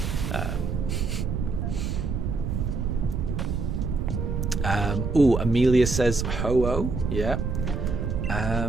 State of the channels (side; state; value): right; noise; rumble, 2 dB below the sound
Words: old. Amelia says Ho-Oh, yeah.